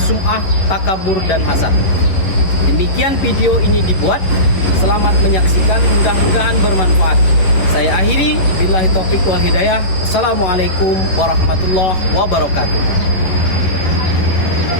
takabur, dan hasad. Demikian video ini dibuat. Selamat menyaksikan, mudah-mudahan bermanfaat. Saya akhiri, billahi taufiq wal hidayah. Wassalamualaikum warahmatullahi wabarakatuh.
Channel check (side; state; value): right; late; 10 ms